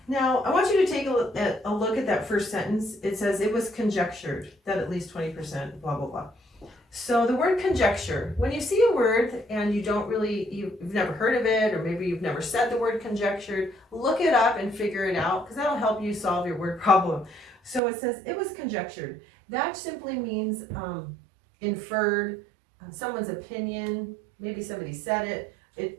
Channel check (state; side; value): drops out; left; at 17.8 s